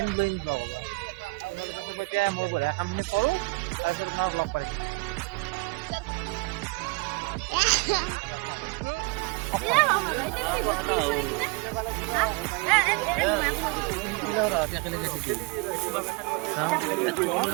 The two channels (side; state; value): left; quieter; 27.5 dB